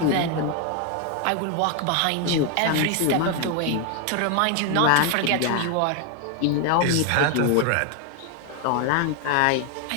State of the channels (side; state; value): both; different; correlation 0.01